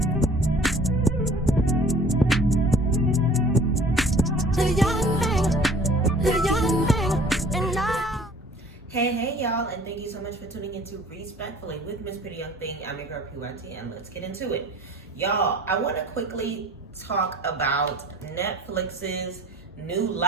The young thing, and now. Hey, y'all, and thank you so much for tuning into Respectfully with Miss Pretty Young Thing. I'm your girl, PYT, and let's get into it. Y'all, I want to quickly talk about Netflix's new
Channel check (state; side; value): normal; both; correlation 0.50